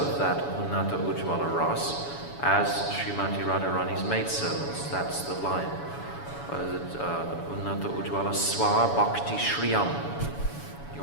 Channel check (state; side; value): late; right; 7.1 ms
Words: that Unnata Ujjvala Ras as Srimati Radharani's maidservants. That's the line. Unnata Ujjvala Swa Bhakti Shriyam.